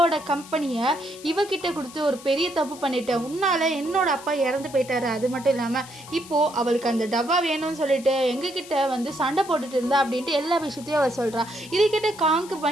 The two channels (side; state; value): left; noise; hiss, 17 dB below the sound